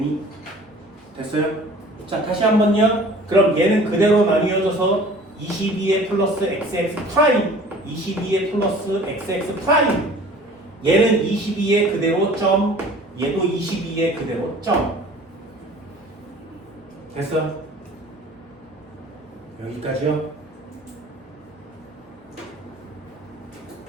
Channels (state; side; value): normal; both; correlation 0.47